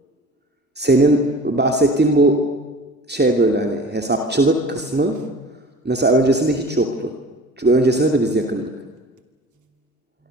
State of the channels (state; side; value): normal; both; correlation 0.41